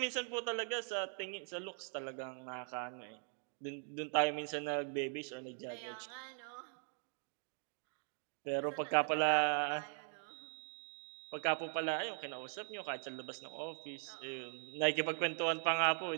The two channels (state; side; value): silent; left; 51 dB below the other